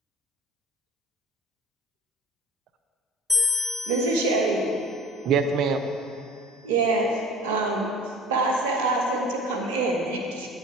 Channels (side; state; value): both; normal; correlation 0.42